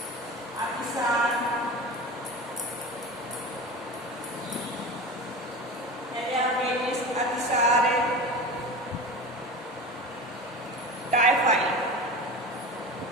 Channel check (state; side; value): normal; both; correlation 0.30